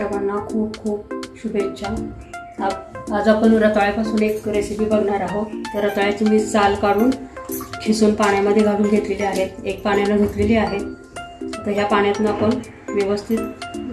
खूप खूप शुभेच्छा। आज आपण रताळ्यापासून एक रेसिपी बघणार आहोत। तर रताळ्याची मी साल काढून खिसून पाण्यामध्ये घालून घेतलेली आहे, एक पाण्याने धुतलेली आहे। तर ह्या पाण्यातून आपण व्यवस्थित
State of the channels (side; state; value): both; identical; correlation 1.00